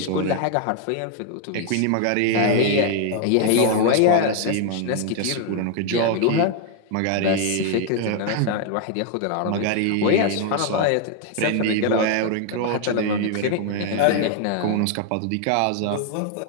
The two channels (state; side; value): different; both; correlation 0.00